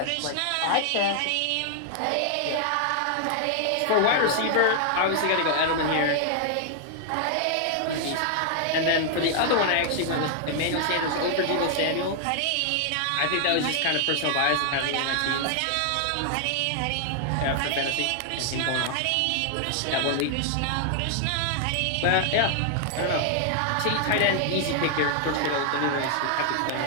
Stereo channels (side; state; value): both; different; correlation 0.00